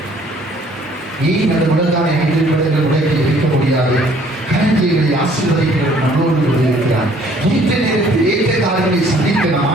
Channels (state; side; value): normal; both; correlation 0.59